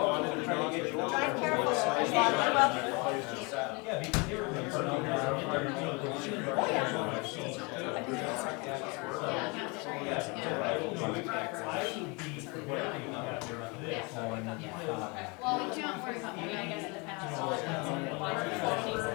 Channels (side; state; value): right; quieter; 29.4 dB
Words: they're trying to get you. Drive careful. Yeah, because they were. well, we can't worry about me, I guess, in the past.